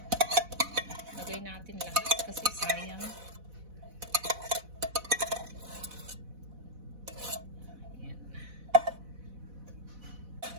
Lagay natin lahat kasi sayang. Ayan.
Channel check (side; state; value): left; late; 4.1 ms